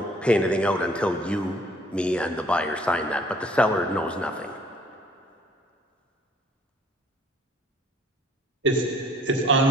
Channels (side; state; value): both; normal; correlation 0.57